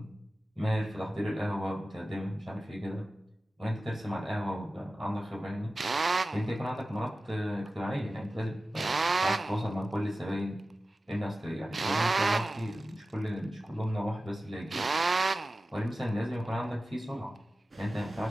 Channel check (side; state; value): both; normal; correlation 0.95